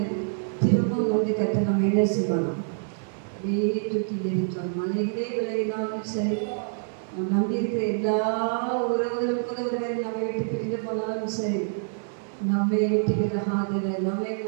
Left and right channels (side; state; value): left; silent; digital silence